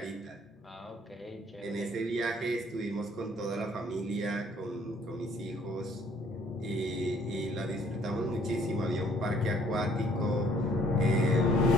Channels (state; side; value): normal; both; correlation 0.60